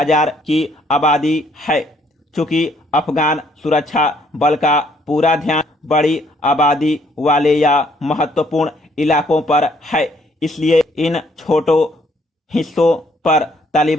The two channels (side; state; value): both; normal; correlation 0.66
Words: की आबादी है। चूंकि अफगान सुरक्षा बल का पूरा ध्यान बड़ी आबादी वाले या महत्वपूर्ण इलाकों पर है, इसलिए इन छोटों हिस्सों पर